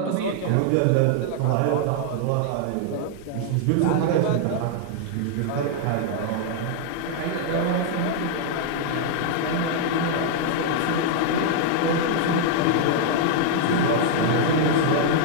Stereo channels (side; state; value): both; different; correlation 0.00